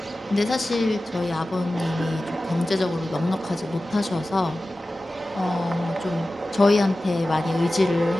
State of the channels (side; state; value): both; normal; correlation 0.95